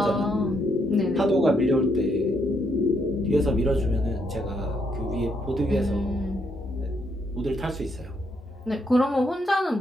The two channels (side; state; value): both; normal; correlation 0.75